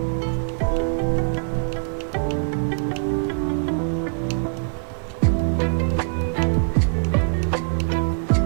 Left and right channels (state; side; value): silent; left; digital silence